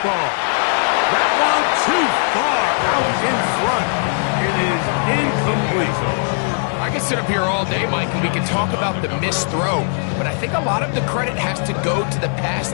ball. That one too far out in front. It is incomplete. I can sit up here all day, Mike, and we can talk about the missed throw, but I think a lot of the credit has to go to the pass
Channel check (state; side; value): silent; right; 63 dB below the other